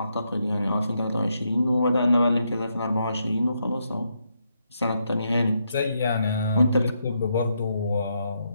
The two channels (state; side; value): inverted; both; correlation -0.80